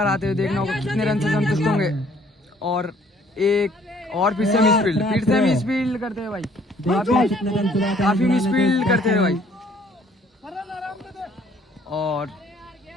आते हुए देखना होगा कितने रन से संतुष्ट होंगे और एक और फिर से मिस फील्ड करते हैं भाई, काफी मिस फील्ड करते हैं भाई। और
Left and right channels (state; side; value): normal; both; correlation 0.60